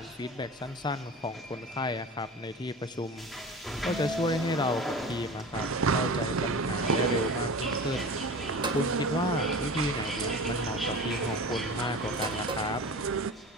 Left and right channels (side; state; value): both; normal; correlation 0.35